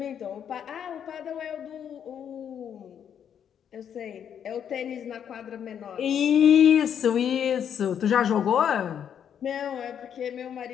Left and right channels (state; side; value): quieter; right; 8.6 dB